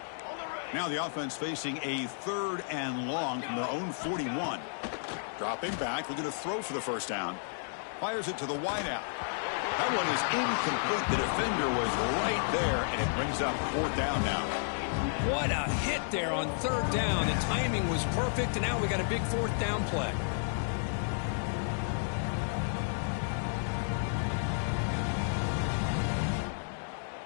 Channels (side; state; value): right; silent; digital silence